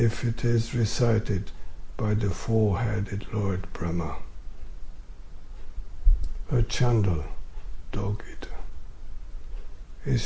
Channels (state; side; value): identical; both; correlation 1.00